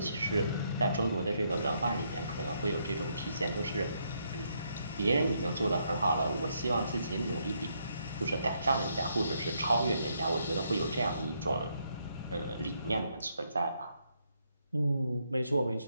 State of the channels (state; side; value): inverted; both; correlation -0.75